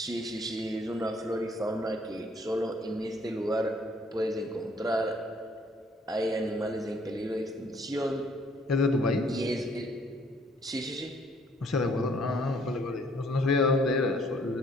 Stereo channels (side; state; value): both; normal; correlation 0.63